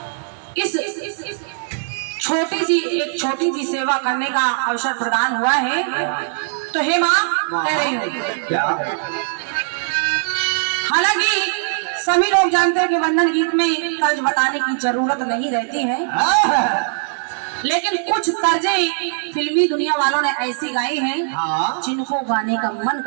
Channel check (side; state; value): left; silent; digital silence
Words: इस छोटी सी सेवा करने का अवसर प्रदान हुआ है। तो हे माँ कह रही हूँ हालांकि सभी लोग जानते हैं कि वंदन गीत में तर्ज बताने की जरूरत नहीं रहती है, लेकिन कुछ तर्जें फिल्मी दुनिया वालों ने ऐसी गाई हैं जिनको गाने का मन